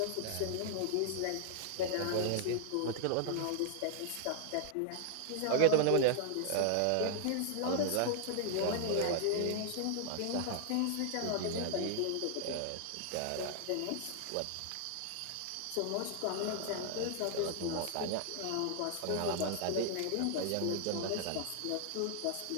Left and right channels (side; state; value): both; different; correlation 0.00